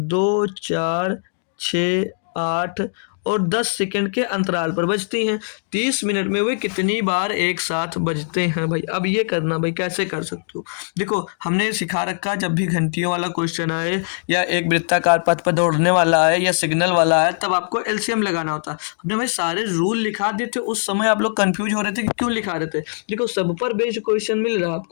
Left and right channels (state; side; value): silent; right; digital silence